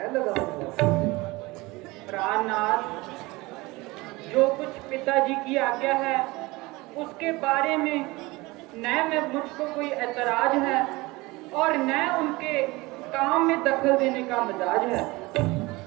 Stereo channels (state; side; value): quieter; left; 22.3 dB